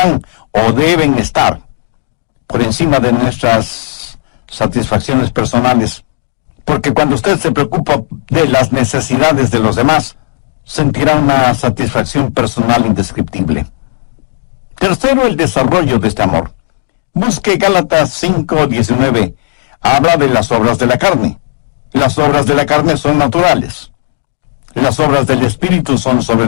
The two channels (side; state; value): right; silent; digital silence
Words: o deben estar por encima de nuestras satisfacciones personales. Porque cuando usted se preocupa de las necesidades de los demás, sentirá una satisfacción personal indescriptible. Tercero, el desarrollo de este amor. Busque Gálatas 5:19. Habla de las obras de la carne. Las obras de la carne son naturales. Las obras del Espíritu son